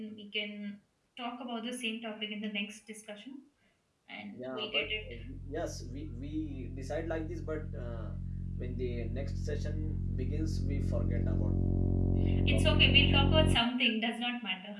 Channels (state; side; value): identical; both; correlation 1.00